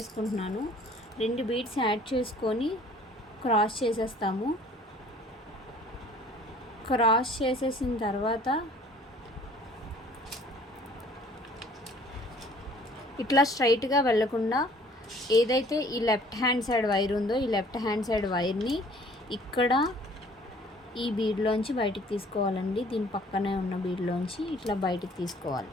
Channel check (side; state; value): both; normal; correlation 0.54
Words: 2 బీడ్స్ యాడ్ చేసుకొని క్రాస్ చేసేస్తాము. క్రాస్ చేసేసిన తర్వాత ఇట్లా స్ట్రైట్గా వెళ్ళకుండా ఏదైతే ఈ లెఫ్ట్ హ్యాండ్ సైడ్ వైర్ ఉందో ఈ లెఫ్ట్ హ్యాండ్ సైడ్ వైర్ని ఇక్కడ ఈ బీడ్లోంచి బయటికి తీసుకోవాలండి. దీని పక్కనే ఉన్న బీడ్లోంచి ఇట్లా బయటికి తీసుకోవాలి.